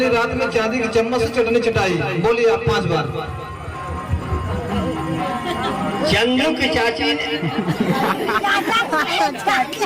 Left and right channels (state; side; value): identical; both; correlation 1.00